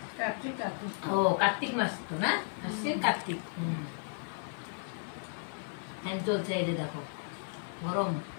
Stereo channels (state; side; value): silent; right; digital silence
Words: কার্তিক কার্তিক ও কার্তিক মাস তো না, আশ্বিন কার্তিক। ফ্যান চলছে, এই যে দেখো গরম।